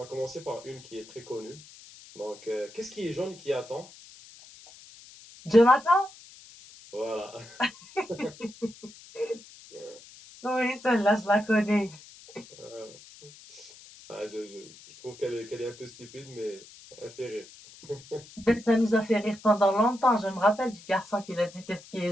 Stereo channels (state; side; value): noise; left; hiss, 20 dB below the sound